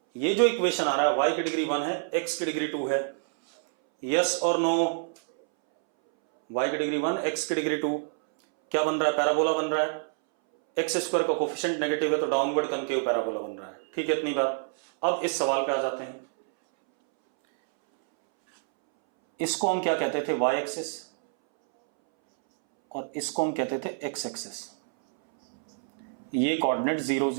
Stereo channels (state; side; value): silent; left; 60 dB below the other